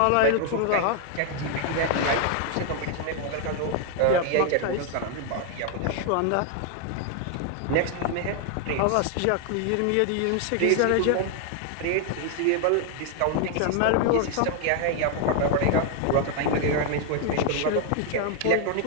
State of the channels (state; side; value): different; both; correlation 0.00